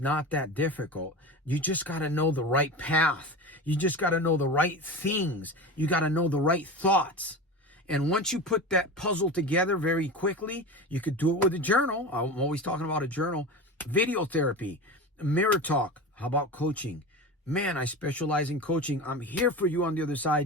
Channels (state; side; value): normal; both; correlation 0.28